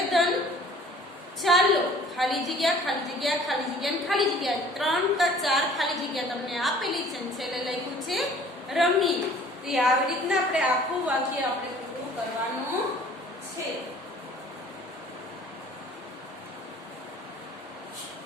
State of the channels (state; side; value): normal; both; correlation 0.51